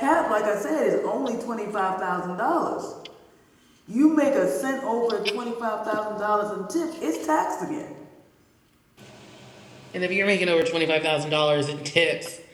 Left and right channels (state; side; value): identical; both; correlation 1.00